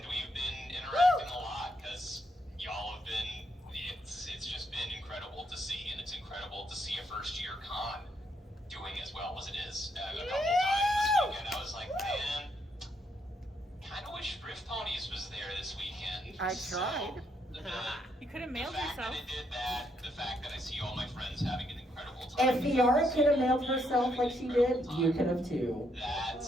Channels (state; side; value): normal; both; correlation 0.76